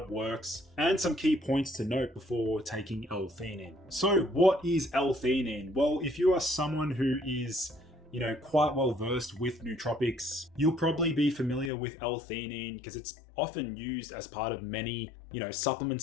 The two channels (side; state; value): right; drops out; at 11.7 s